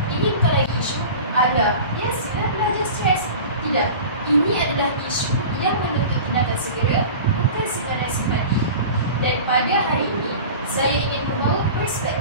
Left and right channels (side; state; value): both; inverted; correlation -0.36